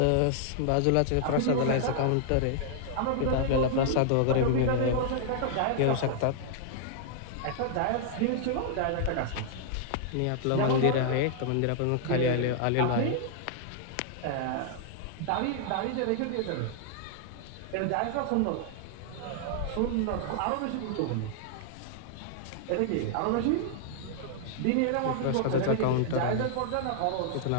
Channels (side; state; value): both; different; correlation -0.01